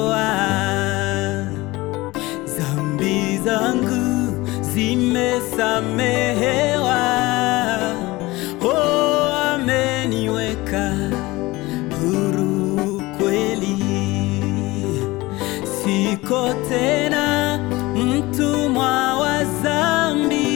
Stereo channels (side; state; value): right; quieter; 20.6 dB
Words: Dhambi zangu zimesamehewa, ameniweka huru kweli. Siko tena mtumwa wa dhambi,